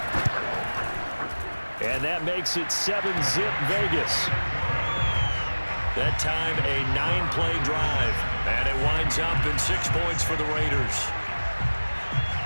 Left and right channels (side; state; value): both; inverted; correlation -1.00